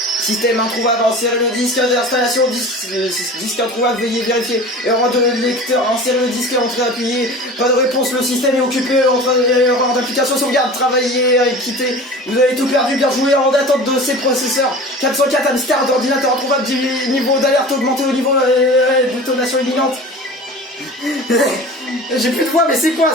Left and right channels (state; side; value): normal; both; correlation 0.37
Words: Système introuvable, insérez le disque d'installation, disque introuvable, veuillez vérifier. Erreur de lecteur, insérez le disque, entrée appuyée. Pas de réponse, le système est occupé, erreur d'application, sauvegarde, travaillez, quittez. Vous avez tout perdu, bien joué, en attente de ces processeurs. 404 hamsters d'ordinateur introuvable, niveau d'alerte augmenté au niveau de détonation imminente. J'ai plus de voix, mais c'est quoi